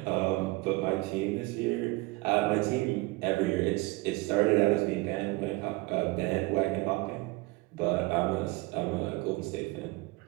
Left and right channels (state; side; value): quieter; left; 22.5 dB